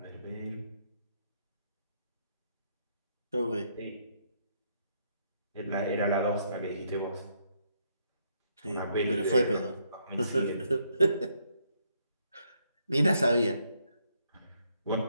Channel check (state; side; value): inverted; both; correlation -0.74